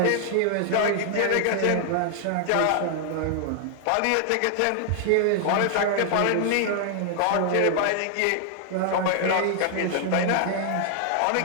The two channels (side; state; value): both; different; correlation 0.00